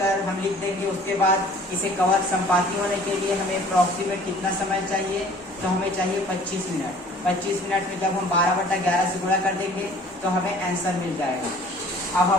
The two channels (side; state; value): both; normal; correlation 0.51